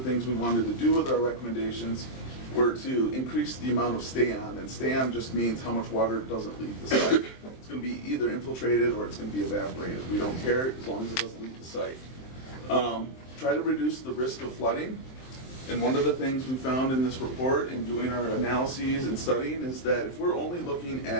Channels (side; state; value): right; late; 23 ms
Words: things we wanted to do with our recommendations were to increase the amount of stay-on, and stay-on just means how much water doesn't leave the site. It's going to be either infiltrated or it's going to be evaporated. We don't care as long as it doesn't leave the site. Try to reduce the risk of flooding. And one of the things we found in this report in doing our analyses and studying is that if we're only looking